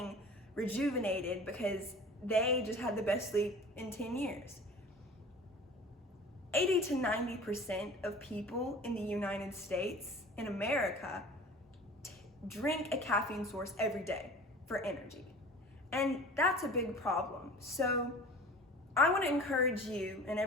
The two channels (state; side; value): normal; both; correlation 0.41